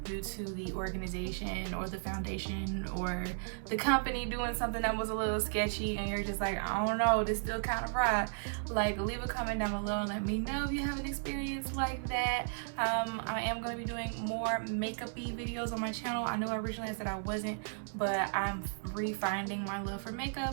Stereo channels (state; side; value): silent; left; 55 dB below the other